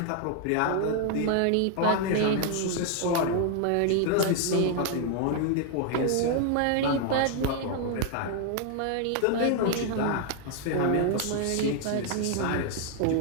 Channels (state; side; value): different; both; correlation 0.00